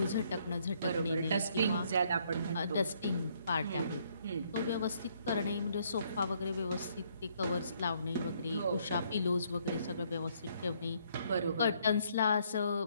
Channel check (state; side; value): inverted; both; correlation -0.68